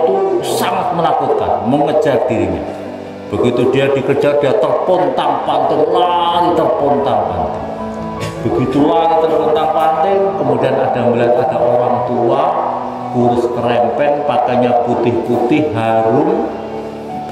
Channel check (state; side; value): identical; both; correlation 1.00